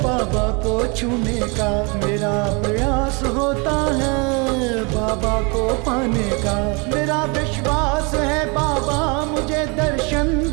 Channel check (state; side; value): quieter; left; 31.1 dB